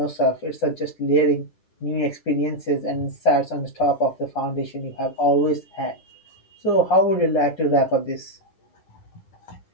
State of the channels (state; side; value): late; right; 9.9 ms